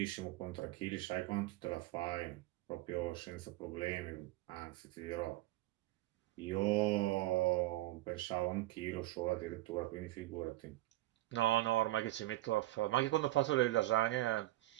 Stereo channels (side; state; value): left; quieter; 17.3 dB